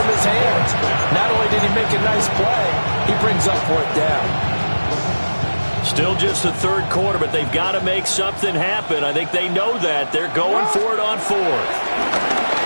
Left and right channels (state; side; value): inverted; both; correlation -1.00